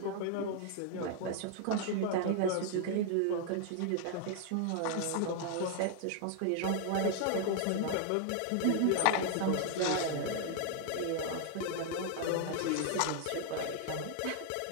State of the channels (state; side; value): different; both; correlation 0.00